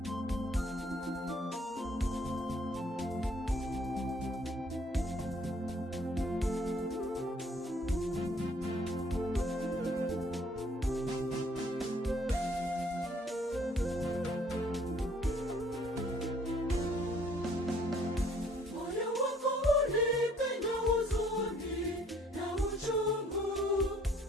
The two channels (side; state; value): both; normal; correlation 0.60